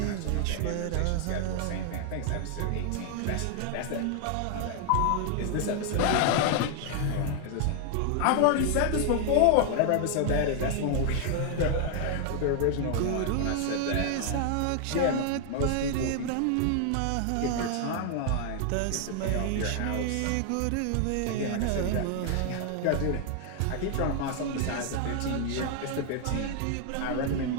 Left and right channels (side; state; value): both; different; correlation 0.00